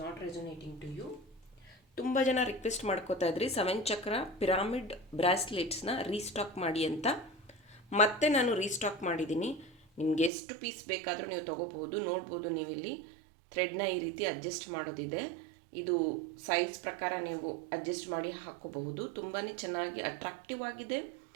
not resonating to you. ತುಂಬ ಜನ ರಿಕ್ವೆಸ್ಟ್ ಮಾಡ್ಕೋತಾ ಇದ್ರಿ 7 ಚಕ್ರ ಪಿರಾಮಿಡ್ ಬ್ರಾಸ್ಲೆಟ್ಸ್ನ ರೀಸ್ಟಾಕ್ ಮಾಡಿ ಅಂತ. ಮತ್ತೆ ನಾನು ರೀಸ್ಟಾಕ್ ಮಾಡಿದ್ದೀನಿ. ನಿಮ್ಗೆ ಎಷ್ಟು ಪೀಸ್ ಬೇಕಾದರೂ ನೀವು ತೊಗೋಬಹುದು. ನೋಡ್ಬೋದು, ನೀವಿಲ್ಲಿ ಥ್ರೆಡ್ನ ಈ ರೀತಿ ಅಡ್ಜಸ್ಟ್ ಮಾಡೋದಿದೆ. ಇದು ಸೈಜ್ ಪ್ರಕಾರ ನೀವು ಅಡ್ಜಸ್ಟ್ ಮಾಡಿ ಹಾಕೋಬಹುದು. ತುಂಬಾ ಚೆನ್ನಾಗಿ ಅಟ್ರಾಕ್ಟಿವ್ ಆಗಿದೆ.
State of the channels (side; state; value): left; drops out; at 10.3 s